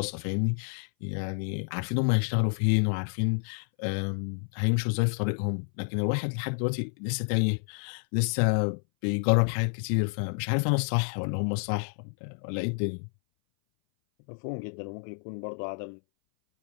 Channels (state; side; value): silent; right; 59 dB below the other